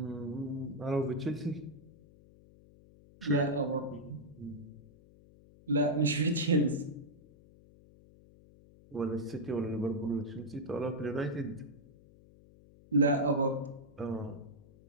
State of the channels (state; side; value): noise; left; hum, 24 dB below the sound